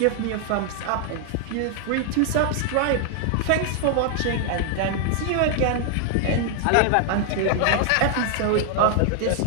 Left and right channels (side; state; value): both; different; correlation 0.00